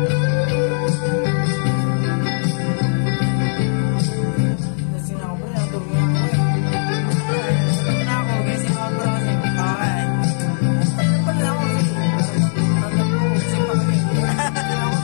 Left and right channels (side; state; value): right; silent; digital silence